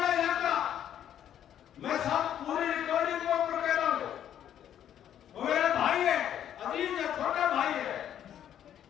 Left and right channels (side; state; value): right; quieter; 10.3 dB